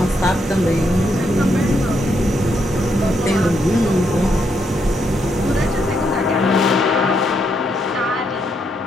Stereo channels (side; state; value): both; normal; correlation 0.77